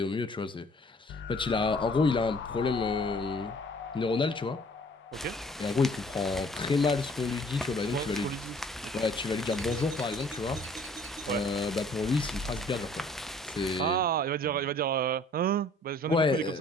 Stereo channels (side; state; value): both; normal; correlation 0.55